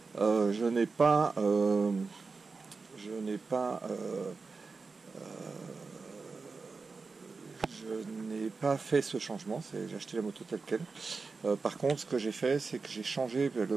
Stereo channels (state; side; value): quieter; left; 4.4 dB